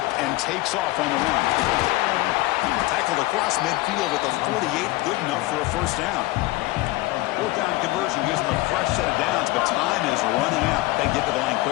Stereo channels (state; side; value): quieter; right; 19.4 dB